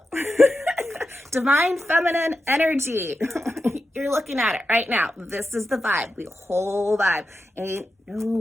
divine feminine energy. You're looking at it right now. This is the vibe. The whole vibe. Ain't no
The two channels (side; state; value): both; normal; correlation 0.90